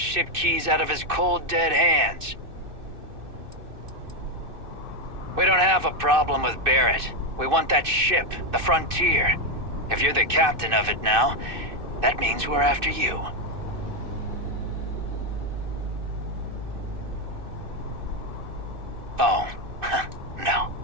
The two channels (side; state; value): left; late; 2.6 ms